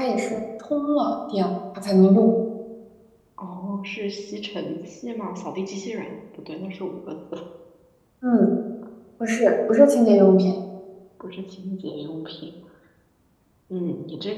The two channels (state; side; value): identical; both; correlation 1.00